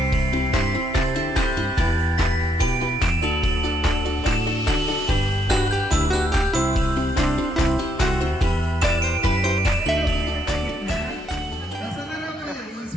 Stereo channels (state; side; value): normal; both; correlation 0.75